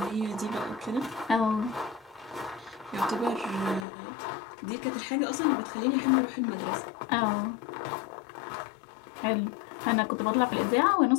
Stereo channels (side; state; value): right; drops out; at 3.9 s